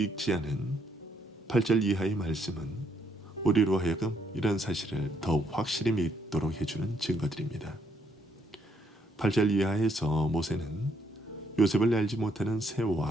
않은 8절 이하의 말씀은 우리로 하여금 이런 사실을 더욱 확실히 믿도록 해주는 증거들입니다. 8절 이하에서 모세는 요셉을 알지 못하는 새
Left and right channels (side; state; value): both; normal; correlation 0.72